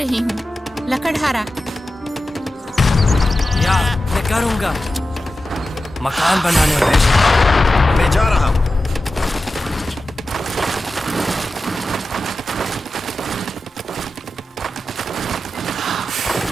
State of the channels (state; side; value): normal; both; correlation 0.93